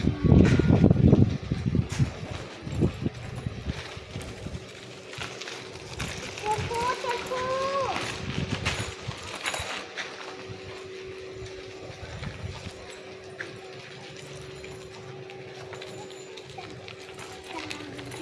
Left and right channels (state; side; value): identical; both; correlation 1.00